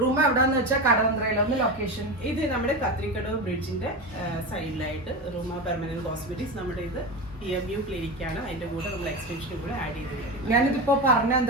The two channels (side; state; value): both; normal; correlation 0.21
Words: എവിടെന്ന് വെച്ചാൽ കടവന്ത്രയിലൊന്ന് ലൊക്കേഷൻ. ഇത് നമ്മുടെ കത്രിക്കടവ് ബ്രിഡ്ജിന്റെ സൈഡിലായിട്ട് റൂമ പെർമനന്റ് കോസ്മെറ്റിക്സ് നമ്മുടെ ഇത് വ്യൂ ക്ലിനിക് ആണ്. അതിന്റെ കൂടെ നമ്മൾ എക്സ്റ്റൻഷനും കൂടെ ആഡ് ചെയ്ത്. ഞാനിതിപ്പോ പറഞ്ഞ